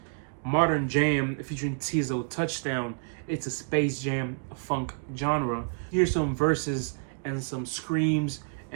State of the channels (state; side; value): silent; left; digital silence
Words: Modern Jam featuring Tizo, Touchdown. It's a space jam funk genre. Here's some verses and some screams